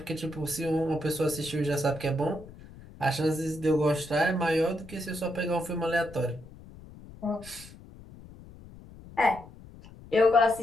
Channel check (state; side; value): noise; left; rumble, 18 dB below the sound